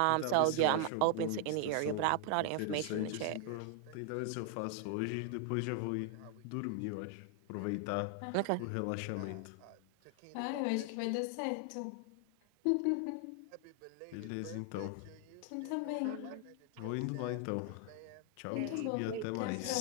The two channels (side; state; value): both; different; correlation 0.00